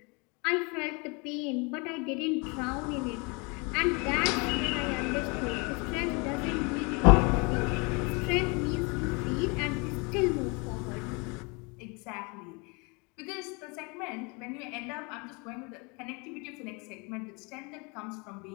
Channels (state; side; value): quieter; right; 30.0 dB